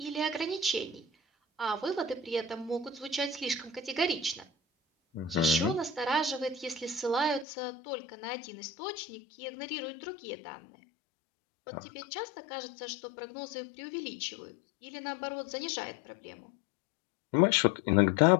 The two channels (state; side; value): drops out; right; at 7.5 s